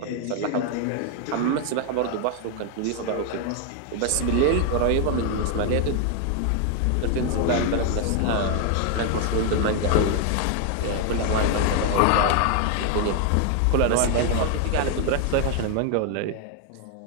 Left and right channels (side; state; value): both; different; correlation 0.00